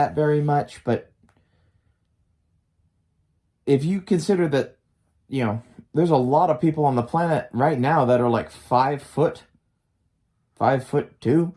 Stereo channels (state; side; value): identical; both; correlation 1.00